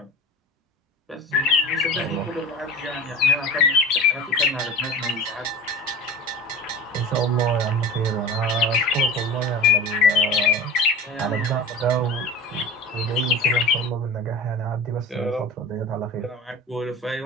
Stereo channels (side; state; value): both; normal; correlation 0.34